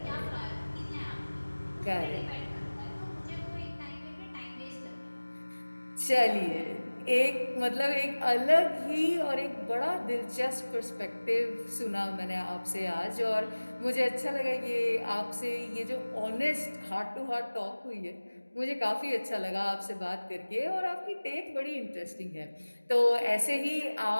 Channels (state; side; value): inverted; both; correlation -1.00